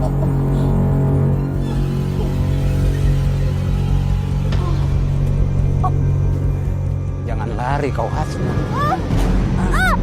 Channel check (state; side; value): identical; both; correlation 1.00